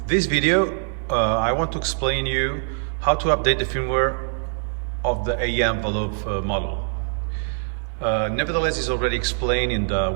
this video, I want to explain you how to update the firmware of the AEM envelope model. Nevertheless, it's already explained in the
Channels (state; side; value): silent; left; digital silence